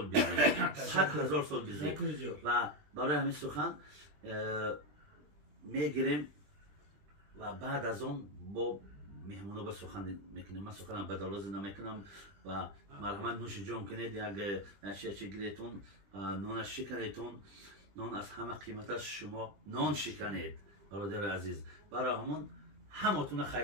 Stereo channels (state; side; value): late; left; 20 ms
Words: بیزیم 100,000 سال بیزیم. و برای همین سخن میگیریم و بعد از اون با مهمونا به سخن میکنیم. من سخنم بدالاز نمیکنم و مرحمت نوش جان کنید. یک نشیه گیریتون نان شکنیتون، نان از همه قیمت است، شما نان شکنید برادر عزیز. برای همون همتون